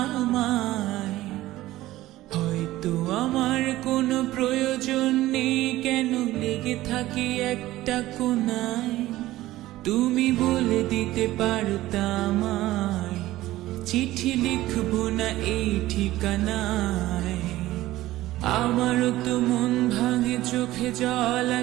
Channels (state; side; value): quieter; left; 16.2 dB